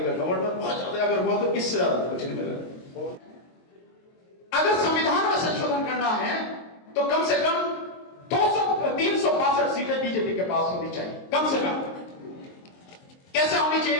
का गवर्नर। बहुत ज्यादा अगर हुआ तो इससे ज्यादा कुछ नहीं मिलेगा। अगर संविधान में संशोधन करना है तो कम से कम 362 सीटें बीजेपी के पास होनी चाहिए, कम से कम। कैसे होनी चाहिए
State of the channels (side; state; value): right; late; 23 ms